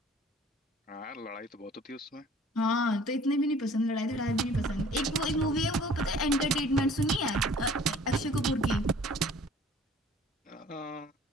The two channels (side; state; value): both; normal; correlation 0.51